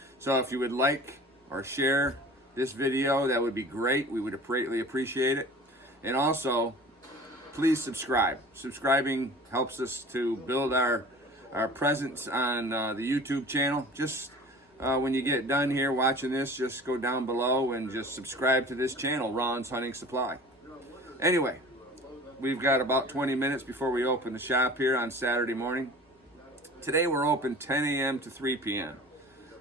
So if you would like or share this video, that would be great. We would greatly appreciate it. And also, please subscribe. Subscribing helps us to build our presence on the YouTube channel. Just when you get done here watching this, just go down below and just subscribe to this channel, Ron's Hunting Supply. Anyway, we've got about 20 minutes before we open the shop here on Saturday morning. Today we're open 10 a.m. to 3 p.m.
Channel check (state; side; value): normal; both; correlation 0.42